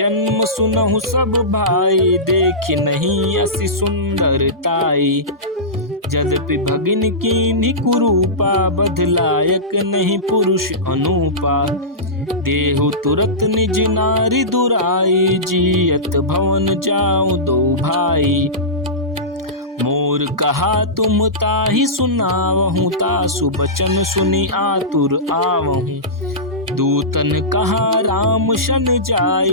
सुनहु सब भाई, देखि नहीं असी सुंदरताई। यद्यपि भगिन कीन्ही कुरूपा, बधलायक नहीं पुरुष अनूपा। देहु तुरत निज नारी दुराई, जियत भवन जाऊं दो भाई। मोर कहा तुम ताहि सुनावहूँ, तासु बचन सुनि आतुर आवहूँ। दूतन कहा राम शन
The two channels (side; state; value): both; normal; correlation -0.17